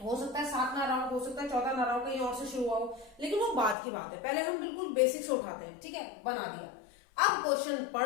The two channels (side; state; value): right; drops out; at 3.8 s